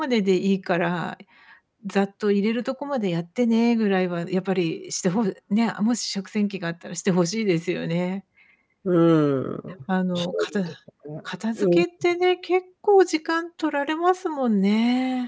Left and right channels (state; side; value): identical; both; correlation 1.00